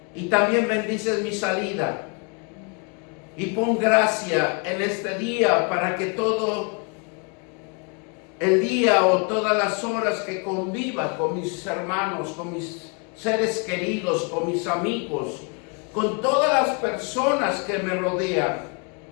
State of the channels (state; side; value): quieter; right; 34.3 dB